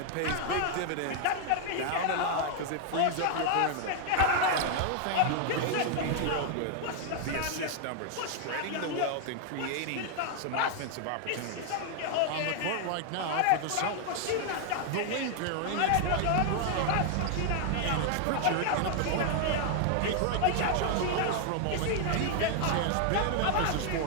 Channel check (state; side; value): different; both; correlation 0.00